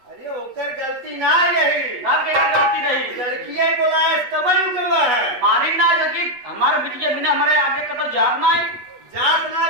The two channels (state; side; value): late; left; 8.2 ms